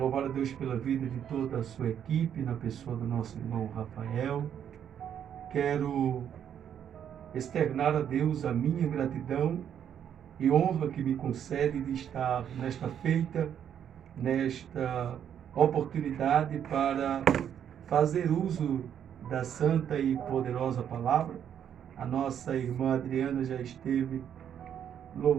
a Deus pela vida de toda a sua equipe, na pessoa do nosso irmão Rafael. Quero externar a Deus a minha gratidão e honra que me concede de estar nesta feita, nesta oportunidade para fazer uso da santa e poderosa palavra. A nossa irmã Adriana já esteve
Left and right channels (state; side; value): quieter; left; 9.1 dB